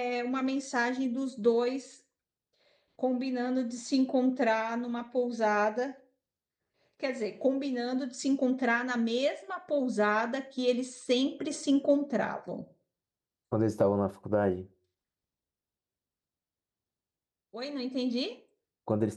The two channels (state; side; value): identical; both; correlation 1.00